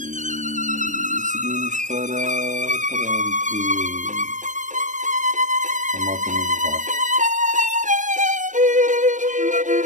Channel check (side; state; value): left; late; 0.37 ms